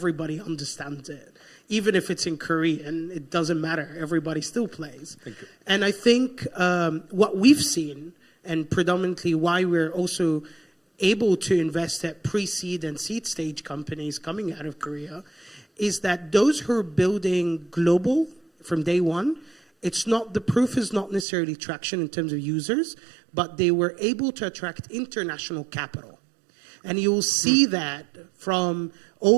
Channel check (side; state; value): left; drops out; at 21.2 s